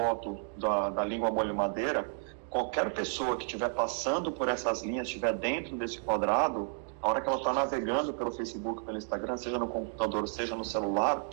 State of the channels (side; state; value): left; silent; 57 dB below the other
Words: da língua molho madeira, qualquer pessoa que estiver passando por essas linhas, estiver dentro desse quadrado, a hora que ela está navegando pelo Facebook, pelo Instagram, seja no computador, seja no celular,